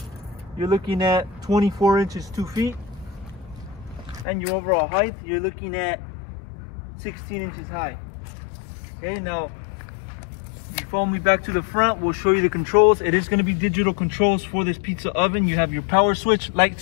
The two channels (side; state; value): right; drops out; at 4.2 s